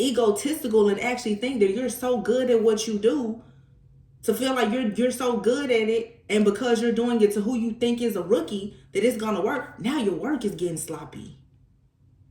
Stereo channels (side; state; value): both; identical; correlation 1.00